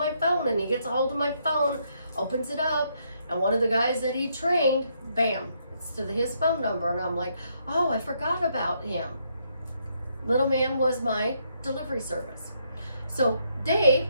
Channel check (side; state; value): both; inverted; correlation -0.74